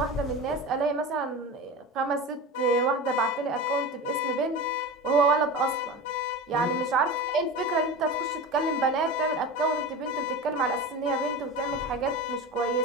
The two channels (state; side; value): normal; both; correlation 0.28